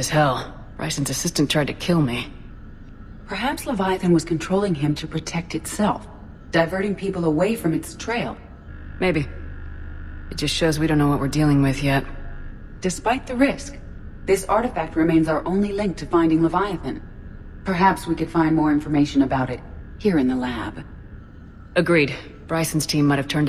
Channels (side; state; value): both; identical; correlation 1.00